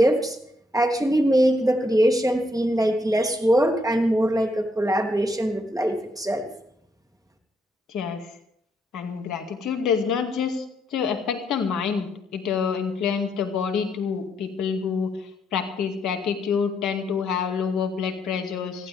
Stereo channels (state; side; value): normal; both; correlation 0.75